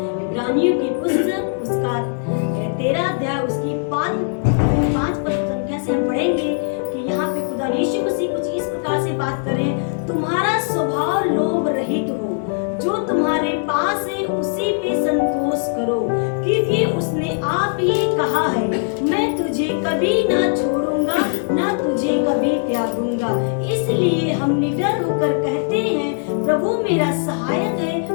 इब्रानियों की पुस्तक उसका 13 अध्याय उसकी 5 पद संख्या से हम पढ़ेंगे कि यहाँ पे खुदा यीशु मसीह कुछ इस प्रकार से बात कर रहे हैं, तुम्हारा स्वभाव लोभ रहित हो, जो तुम्हारे पास है उसी पे संतोष करो, क्योंकि उसने आप ही कहा है, मैं तुझे कभी ना छोड़ूंगा ना तुझे कभी त्यागूंगा। इसलिए हम निडर होकर कहते हैं, प्रभु मेरा सहायक है,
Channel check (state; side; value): silent; right; digital silence